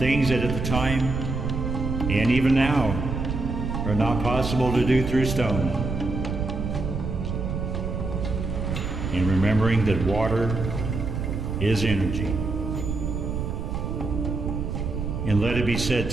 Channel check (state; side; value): noise; right; rumble, 3 dB below the sound